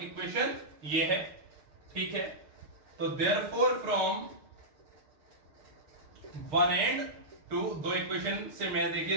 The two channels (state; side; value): late; left; 6.6 ms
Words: इक्वेशन ये है। ठीक है, तो therefore from one and two, दो इक्वेशन से मैं देखिए